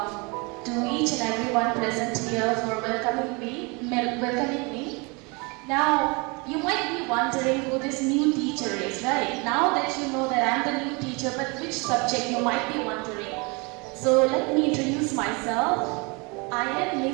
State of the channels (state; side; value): quieter; left; 29.3 dB